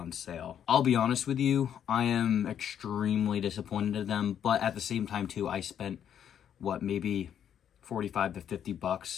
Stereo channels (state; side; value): quieter; right; 9.2 dB